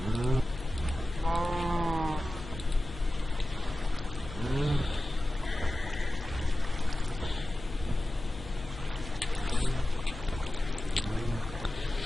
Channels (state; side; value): noise; left; hum, 14 dB below the sound